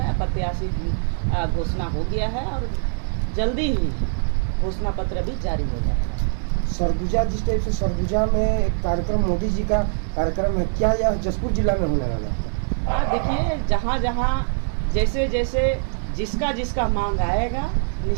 प्रत्याशी घोषणा हो गया है और जल्दी ही घोषणा पत्र भी जारी हो जाएगा। सरगुजा, जिस टाइप से सरगुजा में एक कार्यक्रम, मोदी जी का कार्यक्रम है, क्या यह जशपुर जिला में होने वाला है? हाँ, देखिए, जहाँ जहाँ जैसे जैसे जिसका मांग आएगा,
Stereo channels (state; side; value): silent; left; 64 dB below the other